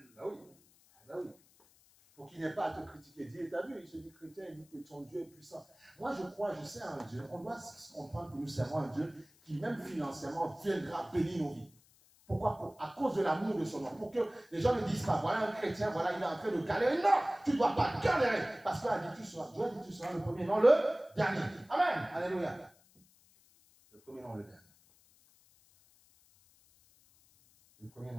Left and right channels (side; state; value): left; noise; hiss, 29 dB below the sound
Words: Là oui. Là oui. Pour qu'il n'ait pas à te critiquer. Dieu, t'as vu, il se dit chrétien, il dit que ton Dieu est puissant. Moi, je sais un Dieu. On doit comprendre que nous servons un Dieu qui, même financièrement, viendra bénir nos vies. Pourquoi? À cause de l'amour de son nom. Pour que les gens ne disent pas, voilà un chrétien, voilà, il est en train de galérer. Non, tu ne dois pas galérer. Parce que Dieu a dit, tu seras le premier, non le dernier. Amen. Alléluia. Le premier, non le dernier. Le premier,